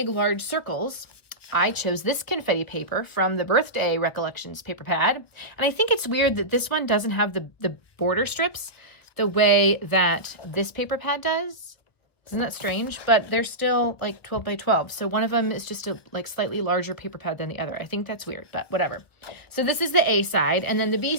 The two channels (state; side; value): late; right; 1.0 ms